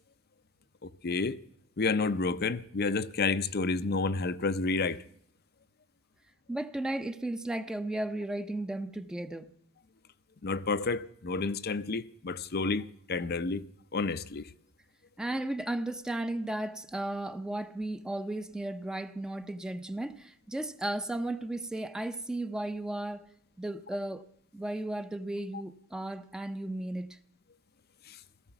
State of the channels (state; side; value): normal; both; correlation 0.51